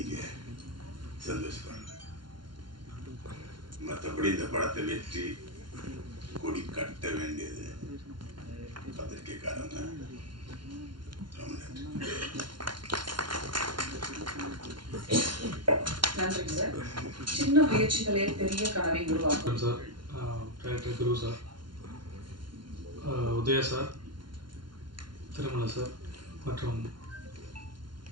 சந்தோஷப்படுறேன். மற்றபடி இந்த படத்தை வெற்றி கொடி கட்ட வேண்டியது பத்திரிகைக்காரங்க. நன்றி சார். சின்ன முயற்சிகளே பெரிய கனவை உருவாக்கும். சார், டைரக்டர் குரு சார், உதய சார், திருமலை சார் மற்றும்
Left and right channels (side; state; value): left; late; 0.72 ms